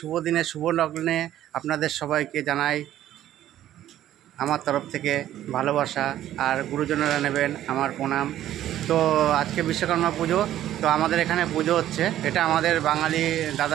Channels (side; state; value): left; quieter; 12.5 dB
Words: দিনে শুভ লগ্নে আপনাদের সবাইকে জানাই আমার তরফ থেকে ভালোবাসা, আর গুরুজনেরা নেবেন আমার প্রণাম। তো আজকে বিশ্বকর্মা পুজো, তো আমাদের এখানে পুজো হচ্ছে। এটা আমাদের বাঙালি